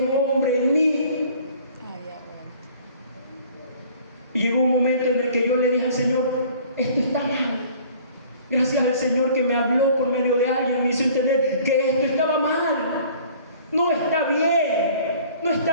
hombre en mí. Y llegó un momento en el que yo le dije al Señor: esto está mal. Gracias al Señor que me habló por medio de alguien, me hizo entender que esto estaba mal. No está bien, no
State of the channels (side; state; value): both; inverted; correlation -0.52